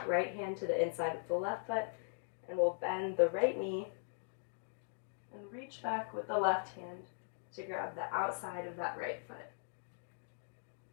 right hand to the inside of the left foot, and we'll bend the right knee and reach back with the left hand to grab the outside of that right foot.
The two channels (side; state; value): right; silent; digital silence